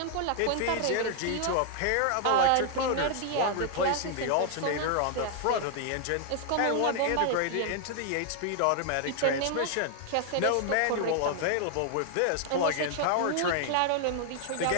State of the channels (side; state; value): both; different; correlation 0.00